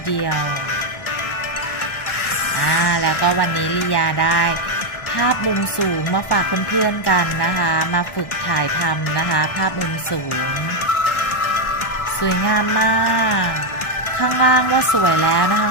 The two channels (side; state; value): right; late; 1.1 ms